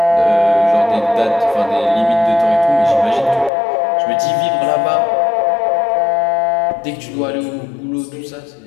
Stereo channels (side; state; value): right; drops out; at 3.5 s